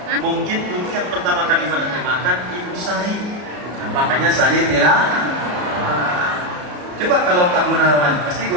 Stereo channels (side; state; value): left; late; 34 ms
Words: Mungkin dulu yang pertama kali menerjemahkan Ibu Sari, makanya Sari tilawah. Coba kalau Pak Gunawan, pasti